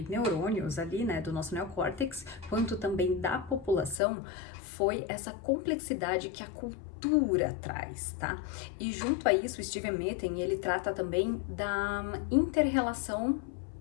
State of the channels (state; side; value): drops out; right; at 4.0 s